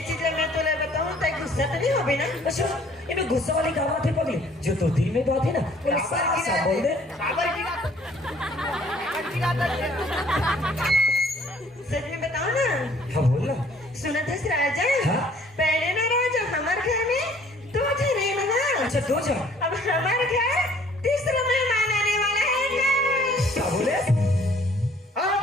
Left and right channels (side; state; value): both; normal; correlation 0.57